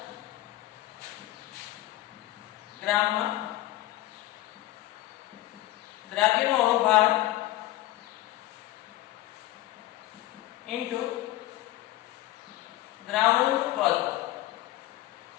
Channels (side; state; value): right; quieter; 16.3 dB